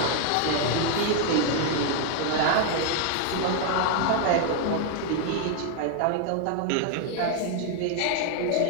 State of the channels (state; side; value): different; both; correlation 0.00